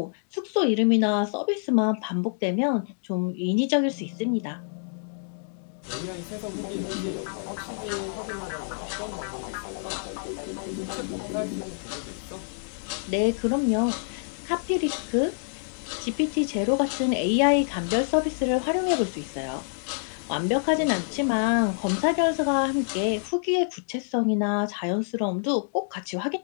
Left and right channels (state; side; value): silent; right; digital silence